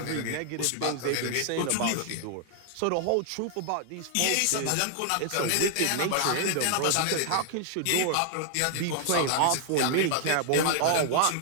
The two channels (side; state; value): both; different; correlation 0.00